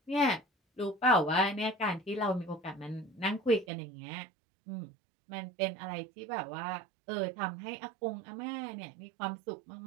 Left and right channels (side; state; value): left; drops out; at 3.7 s